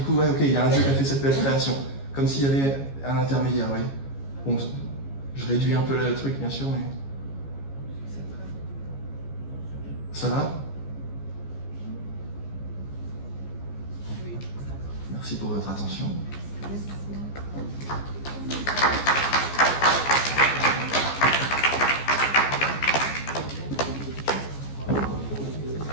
ouais, ok, il y a un Dieu qui a fait cette belle création. Comme s'il y avait un intermédiaire, oui. Bon, je réduis un peu le truc, bien sûr, mais... Ça va ? Merci pour votre attention.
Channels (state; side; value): late; right; 15 ms